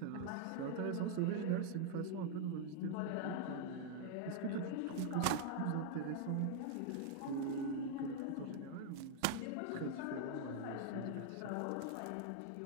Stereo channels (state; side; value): different; both; correlation 0.00